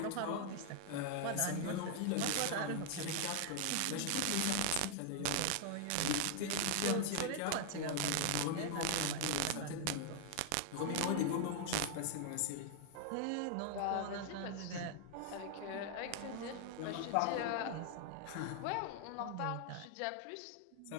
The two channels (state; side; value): different; both; correlation 0.00